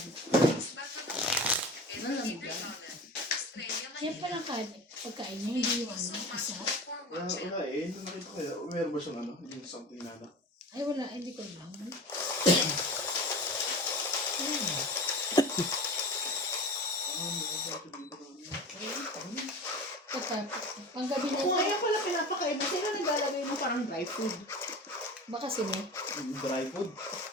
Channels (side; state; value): both; normal; correlation 0.34